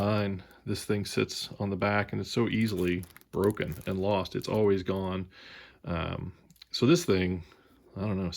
This thing sits on the back, and it's so easily broken and lost. It's always gone. So this thing, I don't know,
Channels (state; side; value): identical; both; correlation 1.00